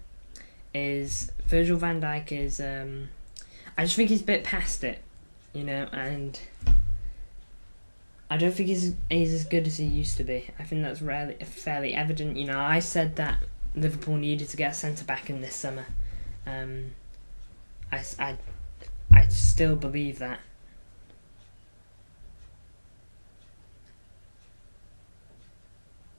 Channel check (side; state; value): both; inverted; correlation -1.00